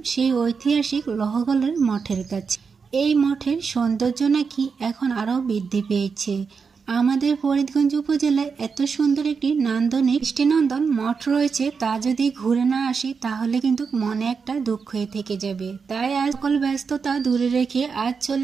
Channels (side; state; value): left; quieter; 5.5 dB